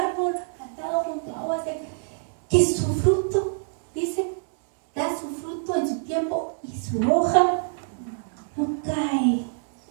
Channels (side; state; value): left; silent; digital silence